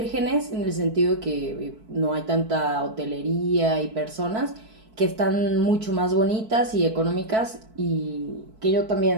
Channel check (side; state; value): left; late; 4.6 ms